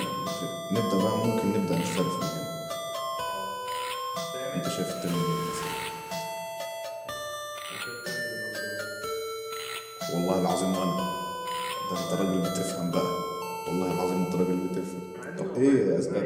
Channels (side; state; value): both; identical; correlation 1.00